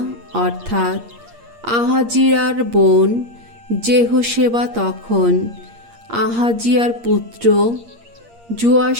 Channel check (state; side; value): late; left; 8.6 ms